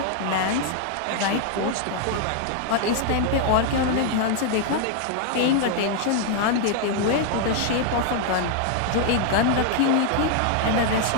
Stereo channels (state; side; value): different; both; correlation 0.00